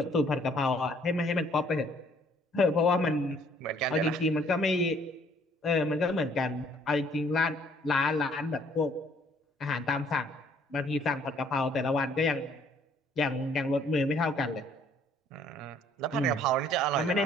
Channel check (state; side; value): normal; both; correlation 0.62